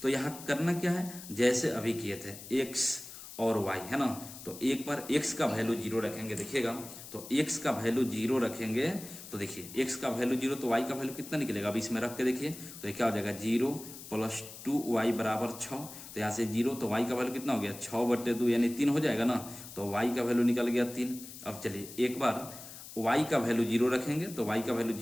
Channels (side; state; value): left; noise; hiss, 14 dB below the sound